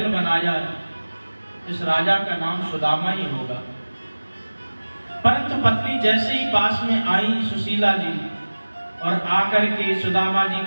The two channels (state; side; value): inverted; both; correlation -1.00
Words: बनाया इस राजा का नाम सुदामा ही होगा। परंतु पत्नी जैसे ही पास में आई सुशीला जी और आकर के सुदामा जी